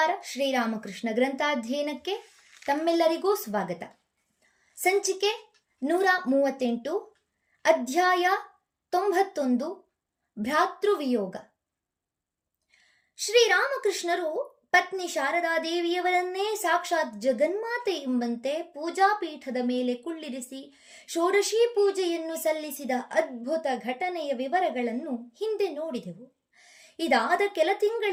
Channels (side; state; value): both; identical; correlation 1.00